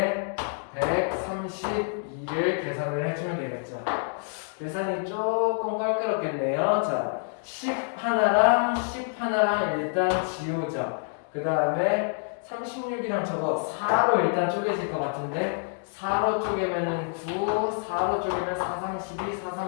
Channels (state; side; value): silent; right; 60 dB below the other